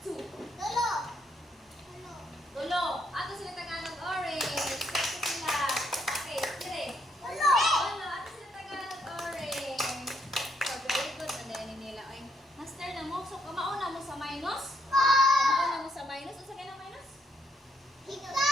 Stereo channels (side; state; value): both; normal; correlation 0.74